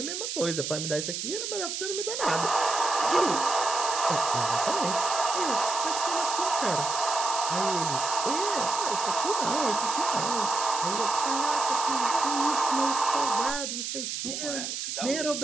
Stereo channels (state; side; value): noise; right; hiss, 4 dB below the sound